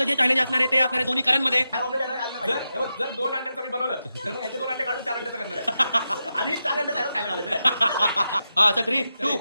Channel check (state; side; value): inverted; both; correlation -0.88